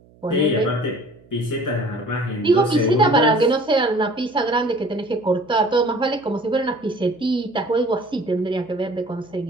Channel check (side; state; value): right; noise; hum, 28 dB below the sound